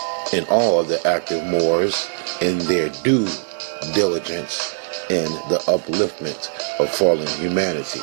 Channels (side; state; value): left; silent; digital silence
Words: and all of the active Moors in their due diligence in the upliftment of fallen humanity.